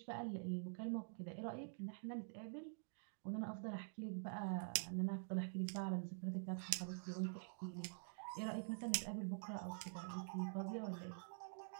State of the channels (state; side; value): silent; left; digital silence